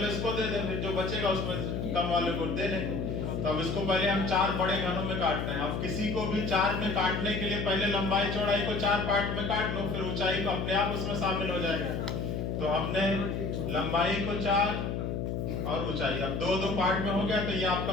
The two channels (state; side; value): noise; left; hum, 2 dB below the sound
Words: इसको दे दें, फिर जो बचेगा उसमें कम वाले को दे दें। तो अब इसको पहले हम 4 बड़े घनों में काटते हैं। अब किसी को भी 4 में काटने के लिए पहले लंबाई चौड़ाई को 4 पार्ट में काट लो, फिर ऊंचाई को अपने आप उसमें शामिल हो जाएगा। तो हमने लंबाई को 4 और ऊंचाई अब 2-2 पार्ट में हो गया, तो ये